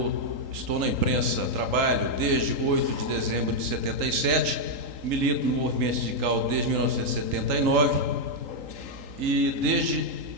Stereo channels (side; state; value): left; late; 3.8 ms